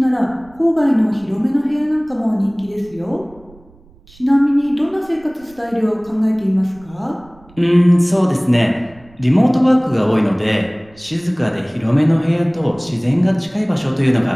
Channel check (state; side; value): noise; right; rumble, 27 dB below the sound